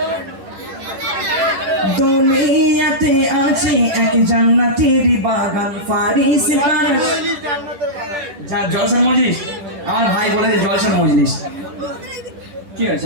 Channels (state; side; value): late; left; 10 ms